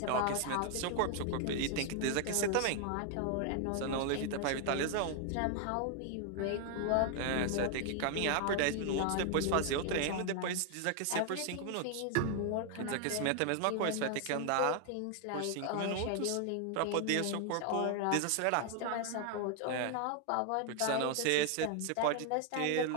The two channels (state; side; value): different; both; correlation 0.00